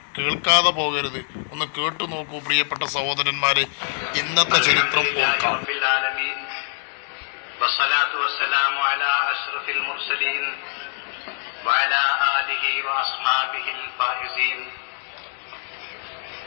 കേൾക്കാതെ പോകരുത്. ഒന്ന് കേട്ടു നോക്കൂ പ്രിയപ്പെട്ട സഹോദരന്മാരെ. ഇന്നത്തെ ചരിത്രം ഓർക്കാം.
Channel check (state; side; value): silent; right; 57 dB below the other